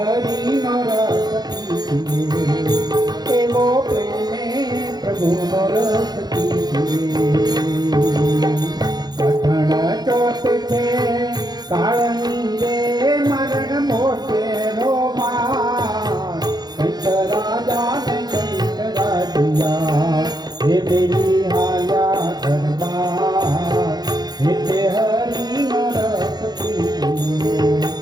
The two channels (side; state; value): left; late; 0.19 ms